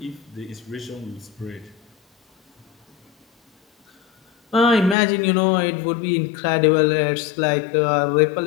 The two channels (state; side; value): drops out; right; at 5.0 s